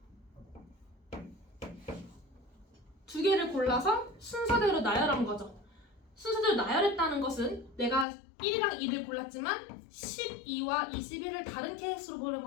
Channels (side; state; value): right; drops out; at 8.1 s